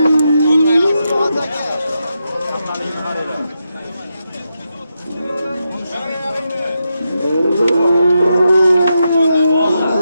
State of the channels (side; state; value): both; inverted; correlation -0.85